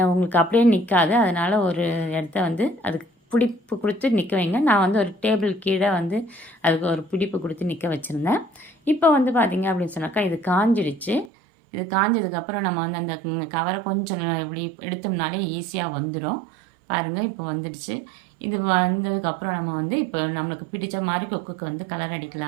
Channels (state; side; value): drops out; left; at 11.3 s